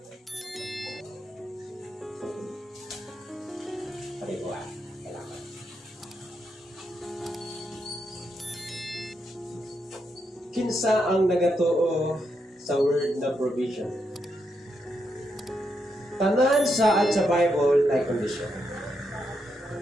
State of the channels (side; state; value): both; normal; correlation 0.81